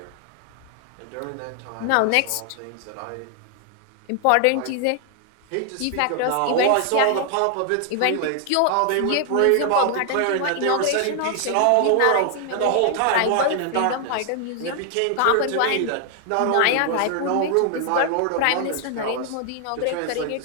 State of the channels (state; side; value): different; both; correlation 0.00